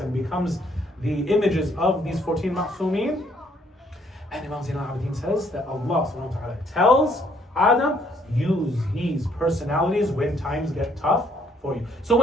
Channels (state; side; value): normal; both; correlation 0.66